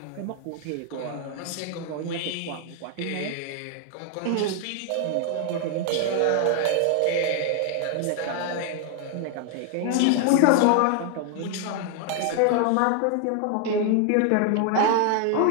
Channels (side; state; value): both; different; correlation 0.00